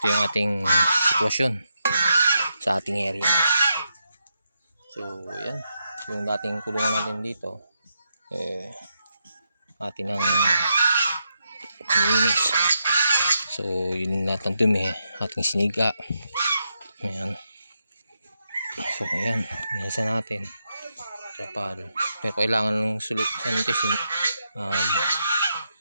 yung ating sitwasyon sa ating area. So yan, yung dating kulungan natin dito atin ang nilinis. So yun lahat ng dumi ating siniga. Ayan. So ayan, nasa natin trapal. Pero kailangan ng sanitisin,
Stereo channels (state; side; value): inverted; both; correlation -0.83